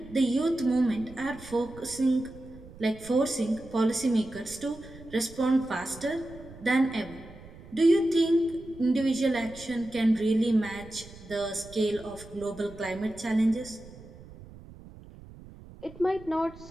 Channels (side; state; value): right; noise; rumble, 18 dB below the sound